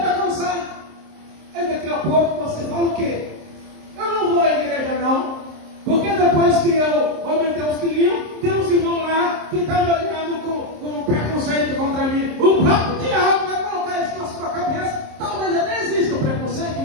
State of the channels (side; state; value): left; late; 26 ms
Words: alcançar. Aí daqui a pouco você fala o quê? Eu não vou à igreja não, porque depois que eu aumentei os quilinhos, tem uns irmãos lá que estão me olhando com preconceito contra mim. O próprio diabo vai colocar isso na sua cabeça. Talvez até exista o preconceito